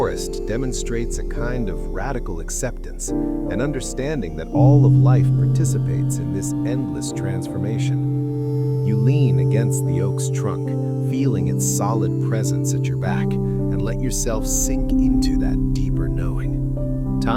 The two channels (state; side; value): identical; both; correlation 1.00